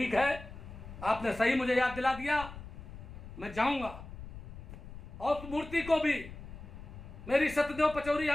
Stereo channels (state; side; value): noise; left; rumble, 13 dB below the sound